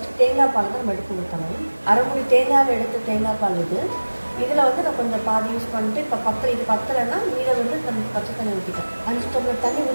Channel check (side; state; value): both; inverted; correlation -1.00